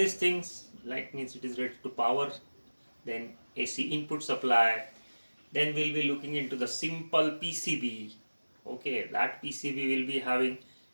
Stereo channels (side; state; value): both; inverted; correlation -1.00